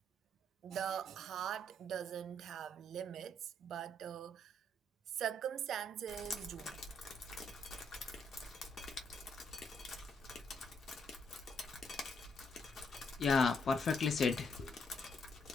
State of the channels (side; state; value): both; normal; correlation 0.73